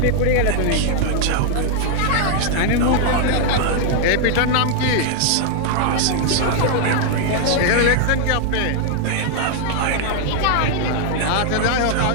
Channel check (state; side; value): different; both; correlation 0.00